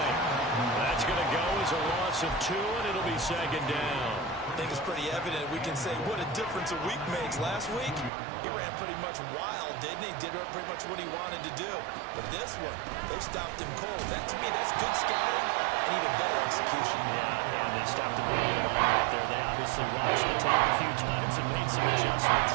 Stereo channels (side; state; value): left; drops out; at 8.1 s